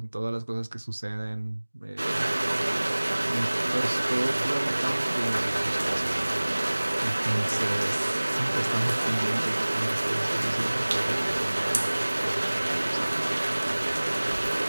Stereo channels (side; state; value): both; inverted; correlation -1.00